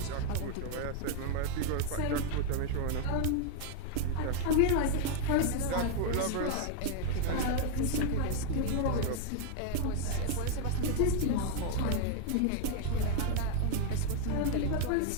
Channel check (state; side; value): different; both; correlation 0.01